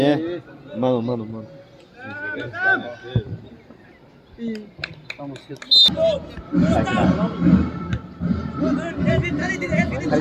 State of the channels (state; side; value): identical; both; correlation 1.00